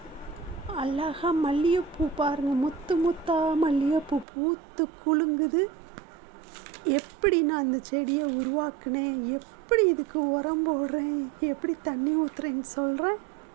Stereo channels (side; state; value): left; drops out; at 4.2 s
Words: அழகாக மல்லிகைப்பூ பாருங்கள், முத்து முத்தா மல்லிகைப்பூ பூத்து குலுங்குது. எப்படி நான் அந்த செடியை உருவாக்குனேன், எப்படி இதுக்கு உரம் போடுறேன், எப்படி தண்ணி ஊற்றுறேன்னு சொல்கிறேன்.